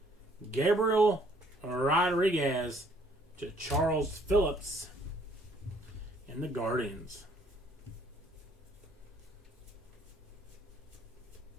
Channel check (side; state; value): both; normal; correlation 0.63